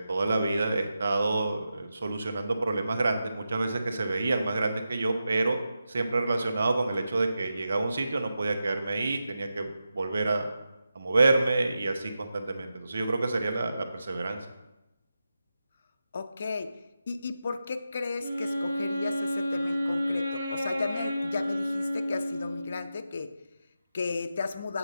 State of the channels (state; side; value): inverted; both; correlation -0.90